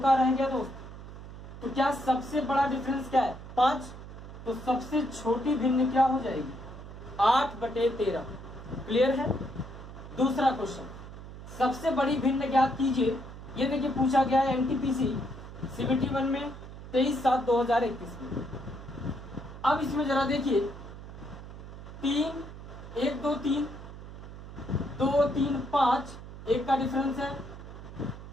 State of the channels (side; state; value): right; noise; hum, 13 dB below the sound